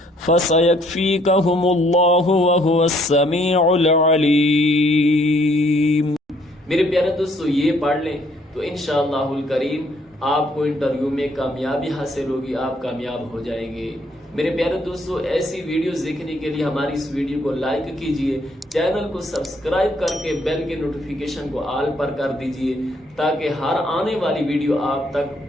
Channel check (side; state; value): both; normal; correlation 0.66